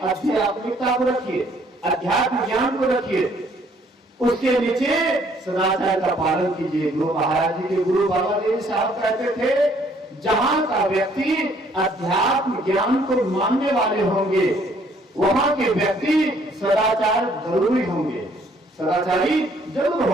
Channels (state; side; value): normal; both; correlation 0.63